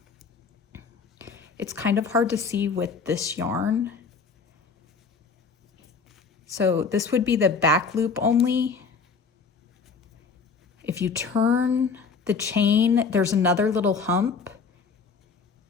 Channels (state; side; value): quieter; right; 5.1 dB